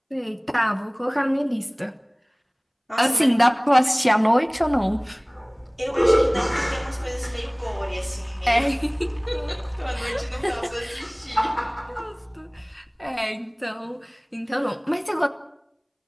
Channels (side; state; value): both; identical; correlation 1.00